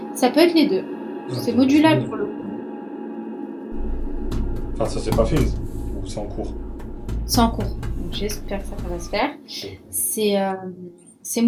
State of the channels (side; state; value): both; identical; correlation 1.00